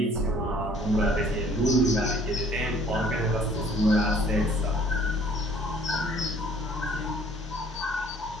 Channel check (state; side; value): normal; both; correlation 0.57